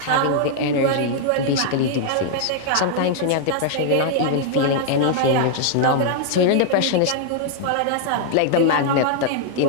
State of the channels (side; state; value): both; different; correlation -0.01